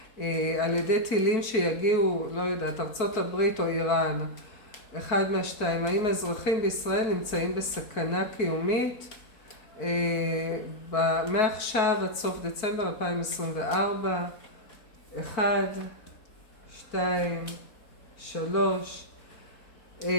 על ידי טילים שיגיעו, לא יודעת, ארצות הברית או איראן, אחד מהשתיים, האם האזרחים בישראל נמצאים בסכנה קיומית? מעכשיו עד סוף דצמבר 2024, 1, 2, 3,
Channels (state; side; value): late; right; 4.5 ms